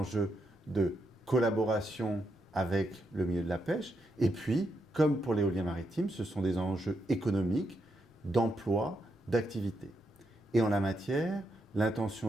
de collaboration avec le milieu de la pêche, et puis, comme pour l'éolien maritime, ce sont des enjeux économiques, d'emploi, d'activité. Et en la matière,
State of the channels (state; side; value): normal; both; correlation 0.81